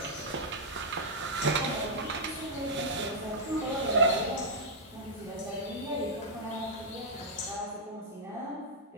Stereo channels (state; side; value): normal; both; correlation -0.07